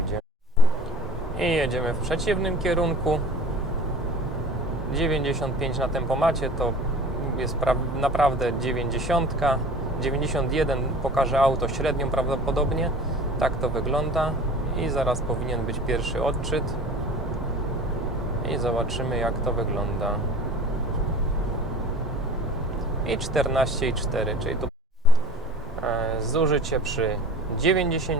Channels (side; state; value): both; normal; correlation 0.41